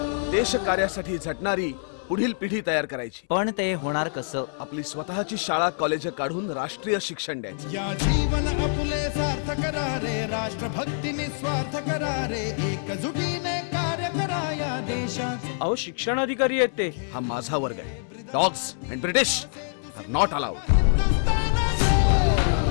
देश कार्यासाठी झटणारी पुढील पिढी तयार करायची, पण ते होणार कसं? आपली स्वतःची शाळा कॉलेज काढून राष्ट्रीय शिक्षण द्यायचं। या जीवन आपुले सार्थ करा रे, राष्ट्रभक्ती निस्वार्थ करा रे, एकजुटीने कार्य करा या देशाचे। अहो शिक्षण अधिकारी आहेत ते। हा माझा वर्ग आहे। Dogs and British are not allowed.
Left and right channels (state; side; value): silent; right; 61 dB below the other